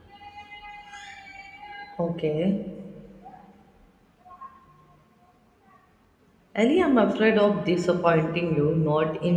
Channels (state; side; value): identical; both; correlation 1.00